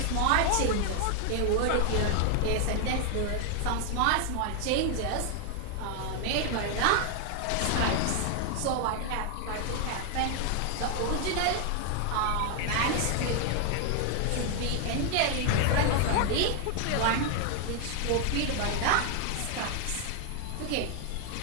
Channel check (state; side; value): different; both; correlation 0.00